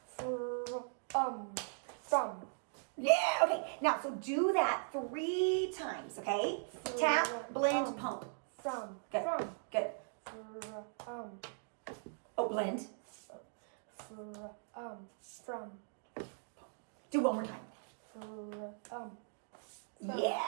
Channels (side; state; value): left; silent; digital silence